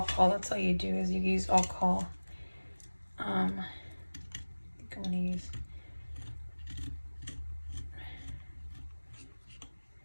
That's all you do, is you use alcohol. I think I'm gonna use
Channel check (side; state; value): both; inverted; correlation -1.00